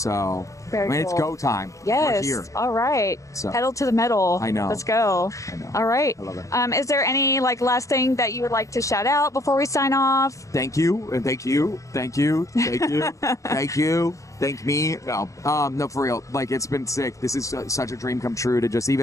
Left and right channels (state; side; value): late; right; 0.15 ms